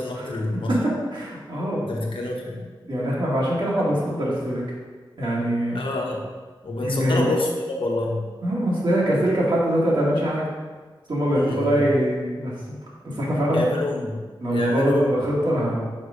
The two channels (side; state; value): both; normal; correlation 0.83